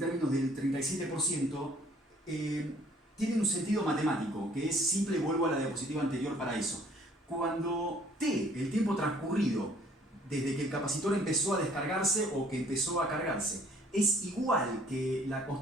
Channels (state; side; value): normal; both; correlation 0.58